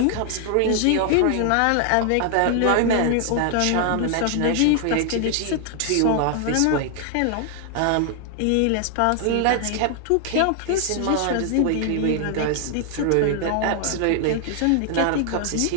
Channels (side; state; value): both; different; correlation 0.00